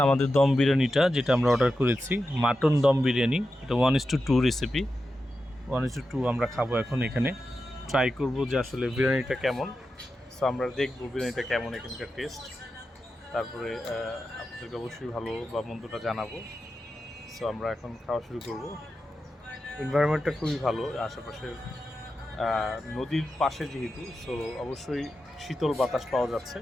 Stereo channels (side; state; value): both; normal; correlation 0.90